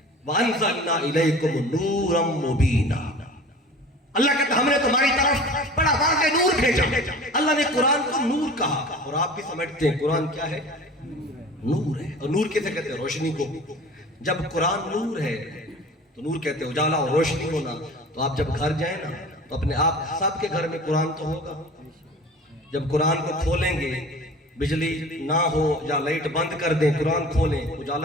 وَأَنزَلْنَا إِلَيْكُمْ نُورًا مُبِينًا. اللہ کہتا ہے ہم نے تمہاری طرف بڑا واضح نور بھیجا. اللہ نے قرآن کو نور کہا, اور آپ بھی سمجھتے ہیں قرآن کیا ہے, نور ہے. اور نور کیسے کہتے ہیں, روشنی کو. جب قرآن نور ہے تو نور کہتے ہیں اجالا اور روشنی ہونا. تو آپ جب گھر جائیں نا تو اپنے آپ سب کے گھر میں قرآن تو ہوگا. جب قرآن کو کھولیں گے, بجلی نہ ہو یا لائٹ بند کر دیں, قرآن کھولیں,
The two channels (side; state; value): both; normal; correlation 0.41